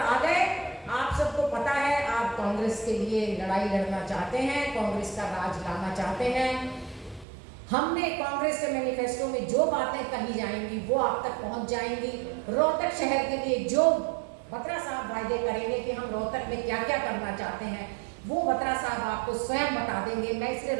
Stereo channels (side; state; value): left; drops out; at 7.2 s